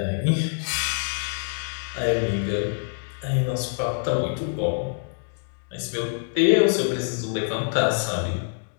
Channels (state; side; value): silent; right; digital silence